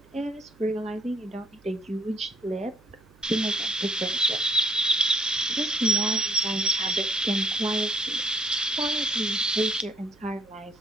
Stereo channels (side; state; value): right; noise; hum, 28 dB below the sound